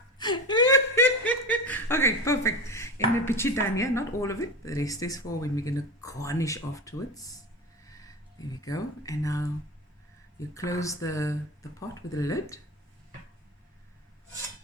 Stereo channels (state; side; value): normal; both; correlation 0.25